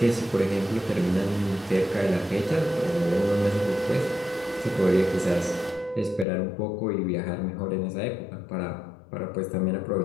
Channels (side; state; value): right; drops out; at 6.2 s